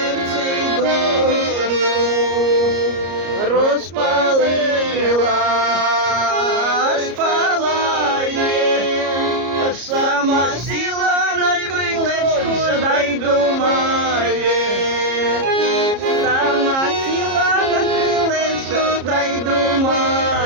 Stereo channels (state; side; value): late; left; 33 ms